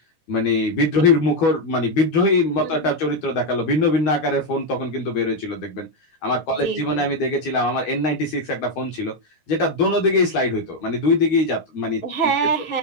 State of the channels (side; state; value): right; late; 12 ms